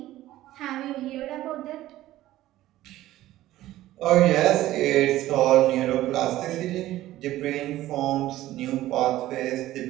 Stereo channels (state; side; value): quieter; left; 15.1 dB